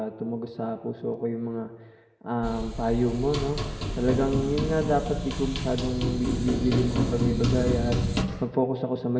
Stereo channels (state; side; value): identical; both; correlation 1.00